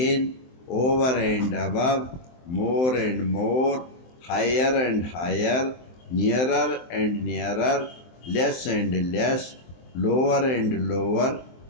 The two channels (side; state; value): right; late; 23 ms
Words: over and above, more and more, higher and higher, nearer and nearer, less and less, lower and lower,